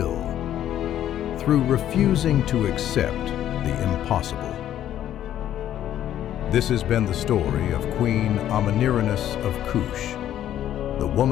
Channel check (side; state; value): right; quieter; 11.5 dB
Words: through refusing to accept the impossible. This has been the story of Queen Amanirenas of Kush, the